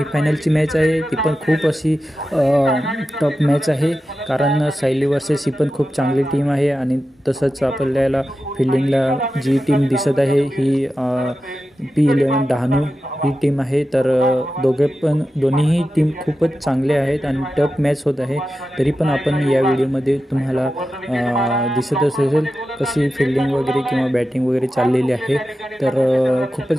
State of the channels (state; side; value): normal; both; correlation 0.92